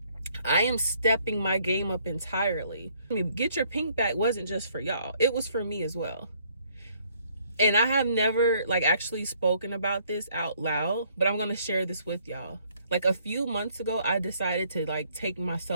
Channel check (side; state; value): both; inverted; correlation -0.64